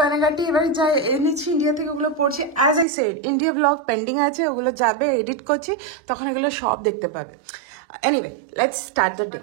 এবার যাই এনেছি ইন্ডিয়া থেকে, ওগুলো পড়ছি। As I said, India blog pending আছে, ওগুলো যাবে, এডিট করছি, তখন এগুলো সব দেখতে পাবে। এনিওয়ে, লেটস স্টার্ট দ্য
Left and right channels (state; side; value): drops out; left; at 2.9 s